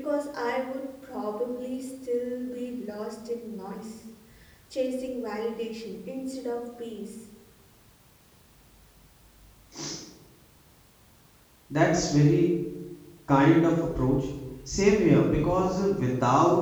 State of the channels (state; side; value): identical; both; correlation 1.00